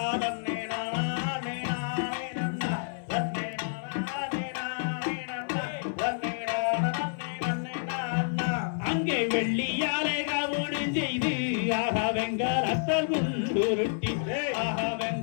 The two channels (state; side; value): silent; right; 58 dB below the other